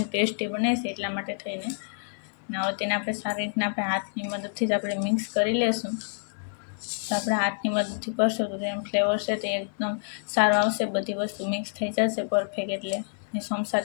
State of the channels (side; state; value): right; silent; 60 dB below the other